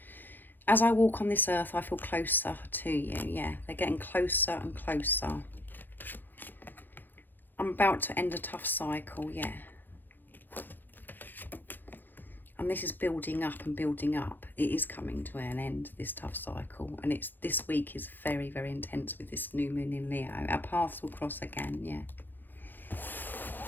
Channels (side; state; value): right; late; 0.090 ms